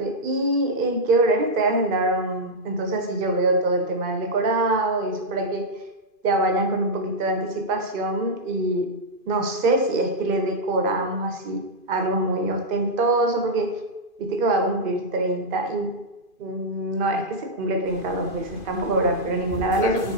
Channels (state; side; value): late; left; 2.5 ms